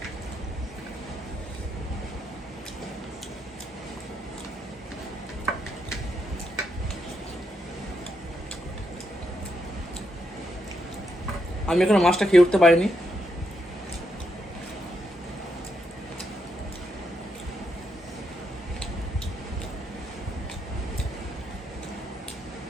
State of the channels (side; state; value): both; normal; correlation 0.80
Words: আমি এখনো মাছটা খেয়ে উঠতে পারিনি।